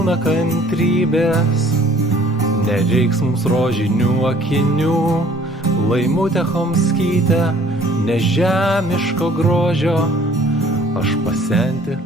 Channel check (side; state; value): both; normal; correlation 0.55